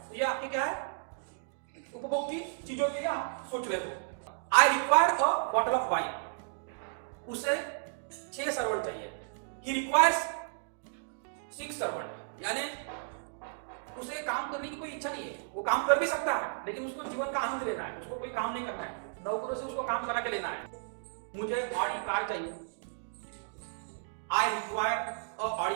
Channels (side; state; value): left; silent; digital silence